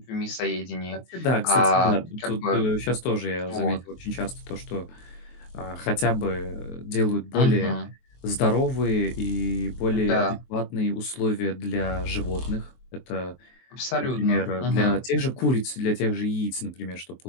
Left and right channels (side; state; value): right; late; 23 ms